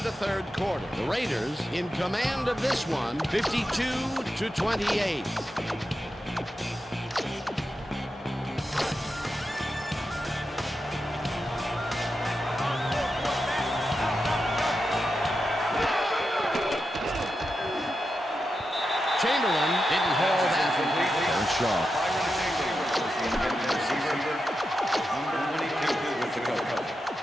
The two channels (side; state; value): both; normal; correlation 0.88